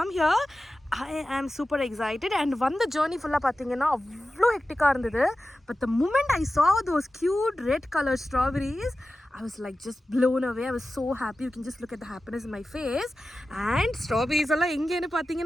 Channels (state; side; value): normal; both; correlation 0.94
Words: here. I am super excited and வந்த journey full-ஆ பாத்தீங்கன்னா அவ்வளோ ஹெக்டிக்கா இருந்தது. But the moment I saw those cute red colored strawberries, I was like just blown away. I was so happy. You can just look at the happiness in my face. And strawberries alla engenu